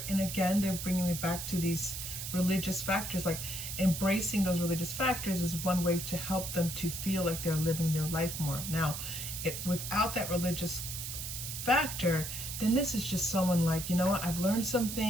again, they're bringing me back to these religious factors. Like embracing those religious factors is one way to help them to feel like they're living their life more. Now, without that religious factor, then this is just someone like, you know what, I've learned some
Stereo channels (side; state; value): right; noise; hiss, 6 dB below the sound